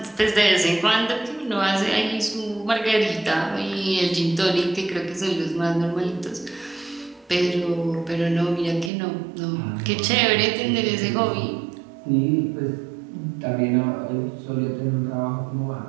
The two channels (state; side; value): drops out; left; at 8.9 s